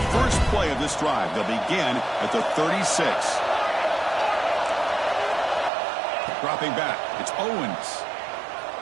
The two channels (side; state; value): left; drops out; at 5.7 s